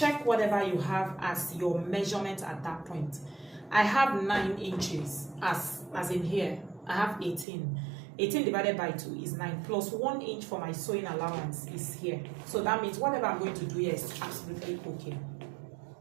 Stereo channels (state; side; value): drops out; left; at 7.5 s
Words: whatever you have as your measurement at that point. I have 9 inches as in here. I have 18. 18 divided by 2 is 9, plus 1 inch for my sewing allowance is here. So that means whatever I'm going to do here is absolutely okay.